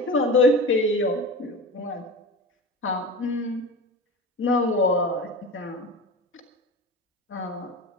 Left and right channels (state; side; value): normal; both; correlation 0.31